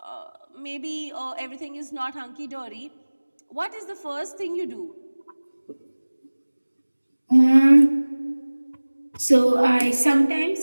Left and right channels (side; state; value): both; inverted; correlation -1.00